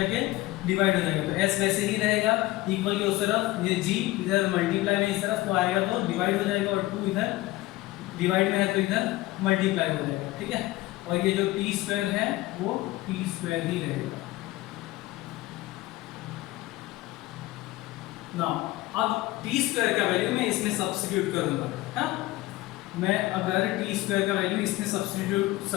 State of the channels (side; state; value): right; quieter; 18.3 dB